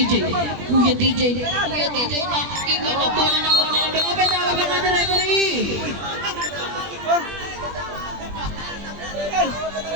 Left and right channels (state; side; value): late; left; 20 ms